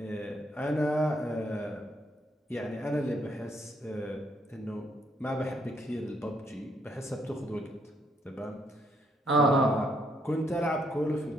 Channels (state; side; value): normal; both; correlation 0.73